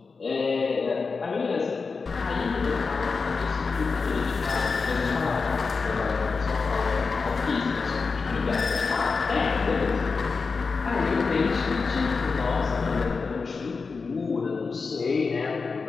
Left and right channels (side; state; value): right; quieter; 4.7 dB